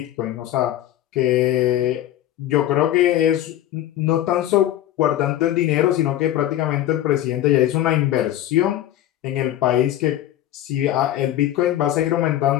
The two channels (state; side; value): quieter; right; 13.0 dB